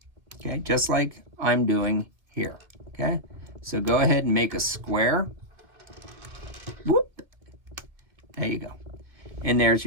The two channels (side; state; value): left; late; 2.3 ms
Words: okay? Just like I'm doing here, okay? So go ahead and make a square. Whoop. There you go. And there's